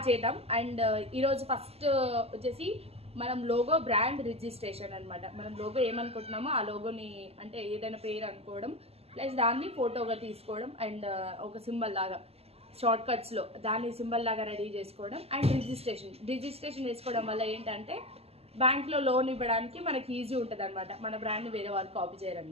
చేద్దాం. అండ్ ఈరోజు ఫస్ట్ వచ్చేసి మనం లోగో బ్రాండ్ రిజిస్ట్రేషన్ అనమాట. మనం లోగో ఏమనుకుంటున్నామో ఆ లోగోని అంటే ఏదైనా పేరు అనుకోవడం, ప్లస్ దాన్ని ఫోటోగా తీసుకోవడం, అండ్ ఒక సింబల్ లాగా షార్ట్ కట్స్లో దాన్ని సింబల్ లాగా రెడీ చేసుకోవడం, అండ్ రిజిస్ట్రేషన్ చేసుకోవడం వల్ల ఏంటంటే బ్యాంక్లో లోన్ ఇవ్వడానికి మనకి ఈజీ ఉంటుంది అనమాట. మన బ్రాండ్ని వేరే వాళ్ళు కాపీ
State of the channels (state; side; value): late; left; 0.29 ms